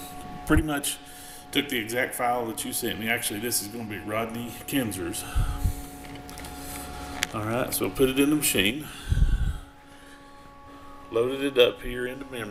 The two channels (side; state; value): both; identical; correlation 1.00